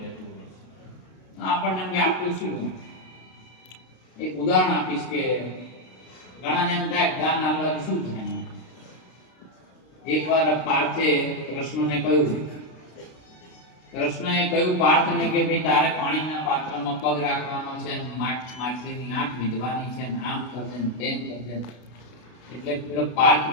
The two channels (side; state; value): right; late; 32 ms